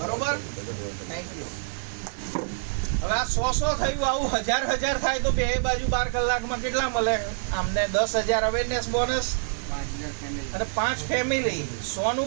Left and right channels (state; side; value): silent; left; 61 dB below the other